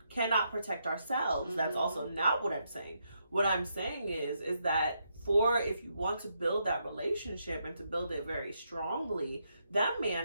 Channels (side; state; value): both; inverted; correlation -0.79